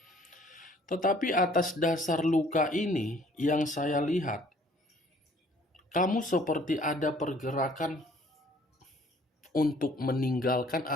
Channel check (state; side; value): normal; both; correlation 0.58